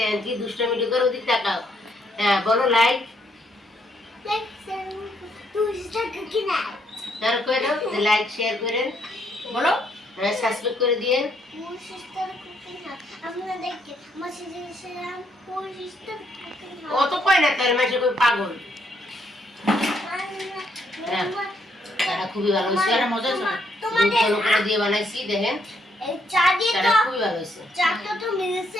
কি দুষ্টমিটি করে, ওদিক তাকাও। হ্যাঁ বলো লাইক লাইক শেয়ার করেন, বলো হ্যাঁ সাবস্ক্রাইব করে দিয়েন। ও তো কয় না তার মাসে কই পাগল। হ্যাঁ, তারা খুবই ভালো হয়েছে। তারা মজা হয়েছে। দুধ ঘন করে দিয়ে বানাইছি দেখেন, এই চা দিয়ে তারা তো খুবই ভালো হয়েছে। চাটা তো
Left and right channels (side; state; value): both; normal; correlation 0.73